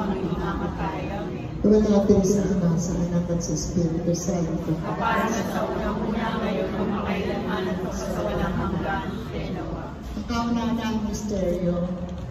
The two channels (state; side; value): identical; both; correlation 1.00